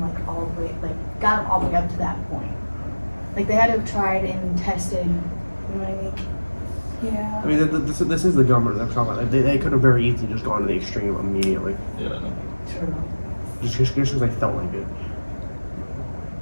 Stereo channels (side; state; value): both; inverted; correlation -1.00